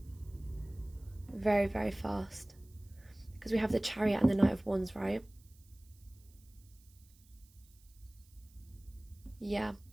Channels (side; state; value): right; noise; hiss, 28 dB below the sound